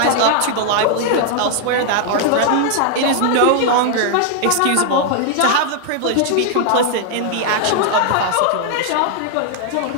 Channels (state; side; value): different; both; correlation 0.00